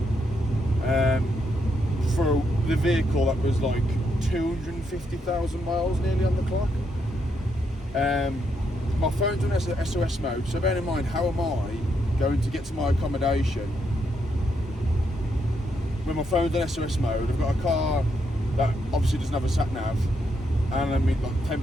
for the vehicle that was like 250,000 miles nearly on the clock. My phone's on SOS mode, so bear in mind, how am I going to get to my accommodation when my phone's on SOS mode? I've got a car that obviously doesn't have a sat nav, and I'm at like 10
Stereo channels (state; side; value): normal; both; correlation 0.78